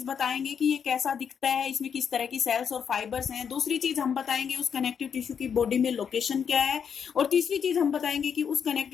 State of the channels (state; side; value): quieter; right; 7.3 dB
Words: बताएंगे कि ये कैसा दिखता है, इसमें किस तरह की सेल्स और फाइबर्स हैं। दूसरी चीज हम बताएंगे उस कनेक्टिव टिश्यू की बॉडी में लोकेशन क्या है, और तीसरी चीज हम बताएंगे कि उस